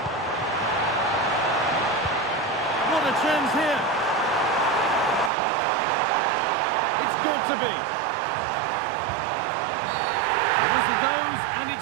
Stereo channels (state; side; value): drops out; left; at 5.3 s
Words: What a chance here. It's got to be. The whistle goes, and